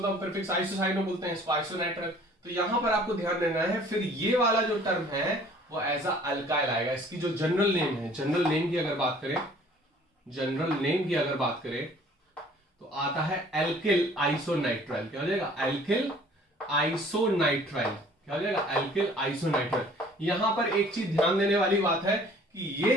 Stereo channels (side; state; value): both; normal; correlation 0.53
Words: हम प्रीफिक्स आइसोसाइनो बोलते हैं, इसको आइसोनाइट्रल। तो यहां पर आपको ध्यान देना है, फिर ये वाला जो टर्म है वो एज अ अल्काइल आएगा। इसकी जो जनरल नेम है, जनरल नेम की अगर बात करें, जनरल नेम की अगर बात करें तो आता है एल्किल आइसोनाइट्राइल। क्या हो जाएगा, एल्किल आइसोनाइट्राइल। क्या हो जाएगा, एल्किल आइसोनाइट्राइल। यहां पर एक चीज ध्यान देने वाली बात है कि ये